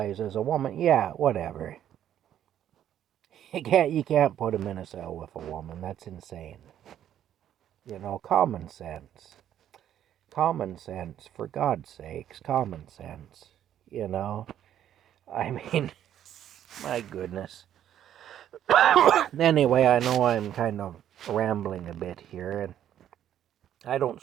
as a woman. Yeah, whatever. You can't put him in a cell with a woman. That's insane. Common sense. Common sense, for God's sakes, common sense. I mean, my goodness. Anyway, I know I'm kind of rambling a bit here, and I don't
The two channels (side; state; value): left; quieter; 10.7 dB